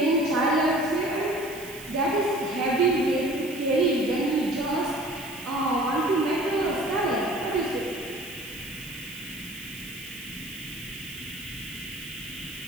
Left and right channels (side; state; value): right; noise; hiss, 16 dB below the sound